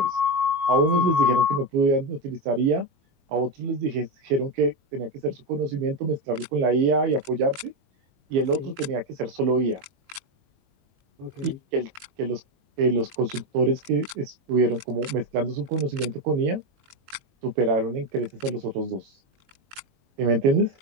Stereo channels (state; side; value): late; left; 22 ms